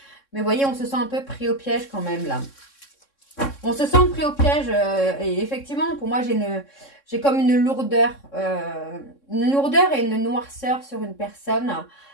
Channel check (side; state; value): right; late; 3.6 ms